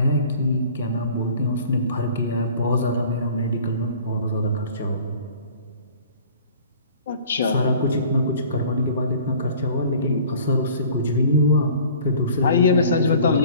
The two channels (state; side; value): inverted; both; correlation -0.49